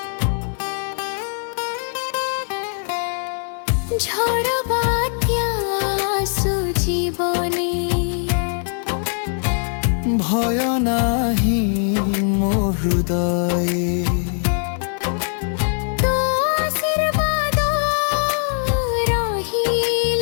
ঝড় বাତ୍যা আସୁ জীবনে ভয় নাহি মো হৃদয়ে তো আশীর্বাদ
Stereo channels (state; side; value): silent; right; 65 dB below the other